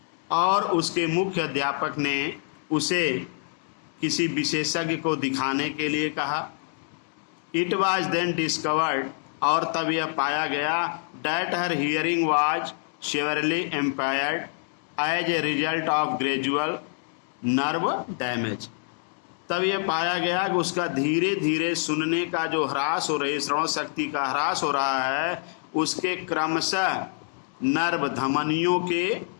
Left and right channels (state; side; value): silent; right; digital silence